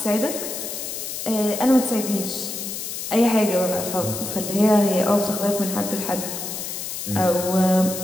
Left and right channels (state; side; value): noise; left; hiss, 6 dB below the sound